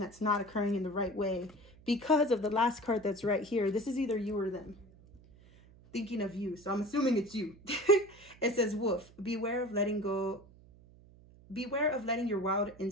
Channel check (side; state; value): right; noise; hum, 24 dB below the sound